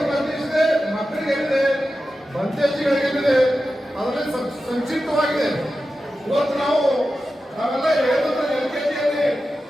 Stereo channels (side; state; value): both; normal; correlation 0.92